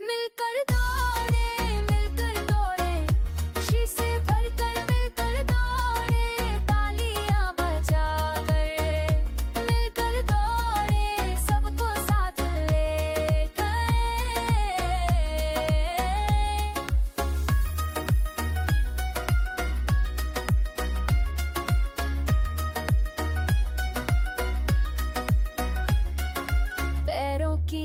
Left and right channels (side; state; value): both; identical; correlation 1.00